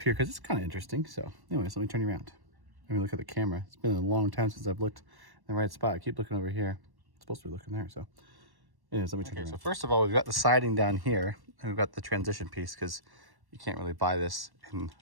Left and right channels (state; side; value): late; left; 1.1 ms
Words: here because it's kind of interesting. So anyways, let me turn you around. Let me look at the camera. It's been a long time since I've looked in the right spot. I keep looking over here. It's supposed to be looking there. So anyways, let me turn you around. So first of all, we've got the siding down here and we've got the transition piece because you can't really buy this in